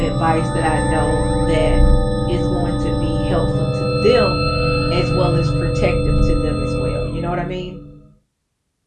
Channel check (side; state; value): both; identical; correlation 1.00